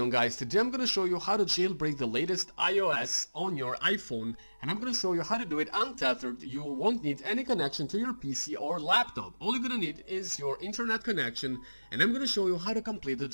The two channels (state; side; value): inverted; both; correlation -1.00